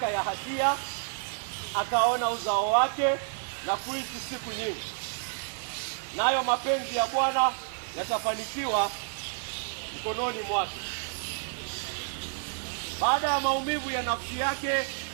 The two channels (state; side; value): silent; left; digital silence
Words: ya hatia, ataona uzao wake na kuishi siku nyingi. Nayo mapenzi ya Bwana yatafanikiwa mkononi mwake. Baada ya maumivu ya nafsi yake,